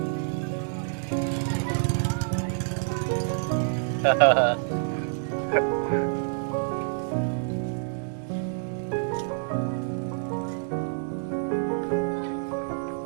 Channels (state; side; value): silent; left; digital silence